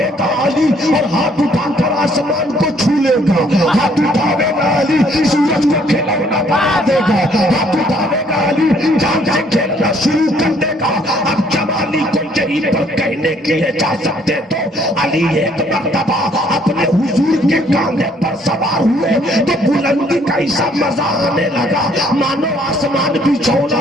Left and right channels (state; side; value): normal; both; correlation 0.64